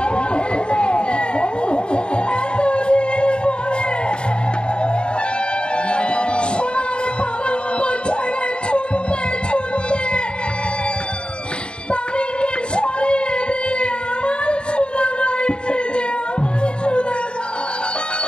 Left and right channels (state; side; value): late; right; 0.052 ms